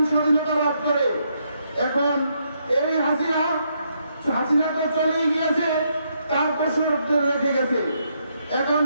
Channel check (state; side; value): inverted; both; correlation -0.76